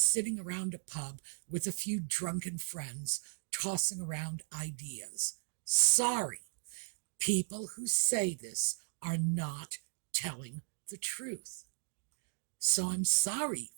around a pub with a few drunken friends tossing around ideas. Sorry. People who say this are not telling the truth. So I'm sorry,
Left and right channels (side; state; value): left; silent; digital silence